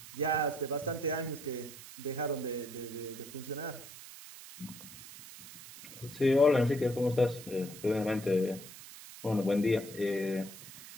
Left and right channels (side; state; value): right; noise; hiss, 15 dB below the sound